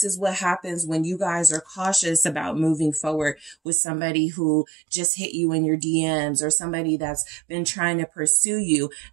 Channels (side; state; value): left; drops out; at 3.6 s